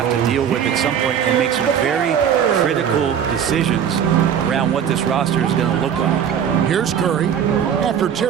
to deal with at some point and make some very critical decisions around what this roster is going to look like. Here's Curry after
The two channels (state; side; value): quieter; left; 8.5 dB